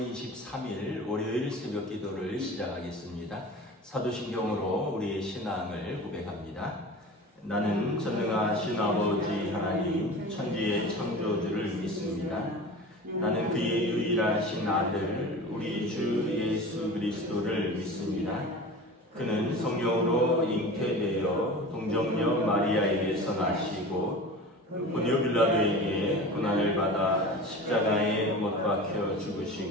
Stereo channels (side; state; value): both; normal; correlation 0.35